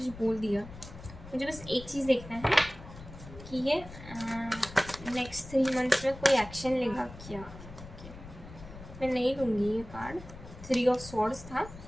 बोल दिया। मुझे बस एक चीज़ देखना है कि ये नेक्स्ट 3 मंथ्स में कोई एक्शन लेगा क्या। मैं नहीं लूँगी ये कार्ड, 3 ऑफ स्वॉर्ड्स था,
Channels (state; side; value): noise; left; rumble, 15 dB below the sound